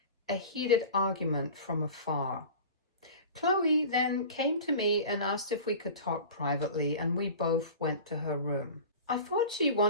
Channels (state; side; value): inverted; both; correlation -0.36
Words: a heated argument from afar. Chloe then came to me and asked if we could talk privately, and we both went to her room. I thought she